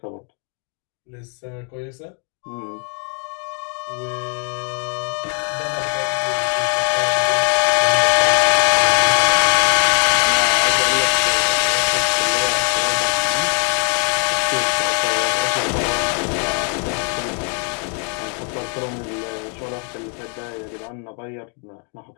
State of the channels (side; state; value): right; quieter; 39.6 dB